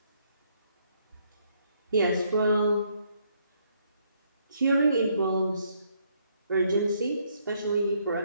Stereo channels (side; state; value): both; inverted; correlation -0.71